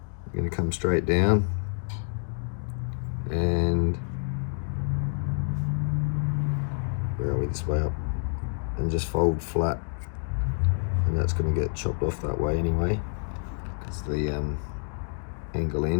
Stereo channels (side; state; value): right; silent; digital silence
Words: We're going to come straight down and where are we, this way up, and just fold flat, and that's going to get chopped off that way anyway because the angle